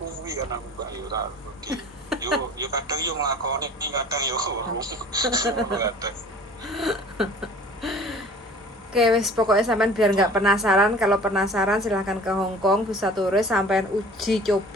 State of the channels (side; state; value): both; normal; correlation 0.45